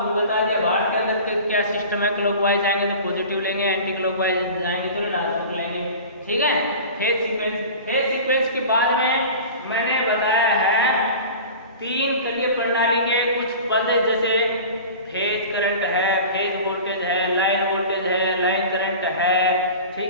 भी बता दिया। भार के अंदर क्या सिस्टम है, क्लॉकवाइज आएंगे तो पॉजिटिव लेंगे, एंटी क्लॉकवाइज आएंगे तो ऋणात्मक लेंगे। ठीक है, फेज सीक्वेंस के बाद में मैंने बताया है तीन कलीय प्रणाली के कुछ पद जैसे फेज करंट है, फेज वोल्टेज है, लाइन वोल्टेज है, लाइन करंट है,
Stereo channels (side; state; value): both; inverted; correlation -0.37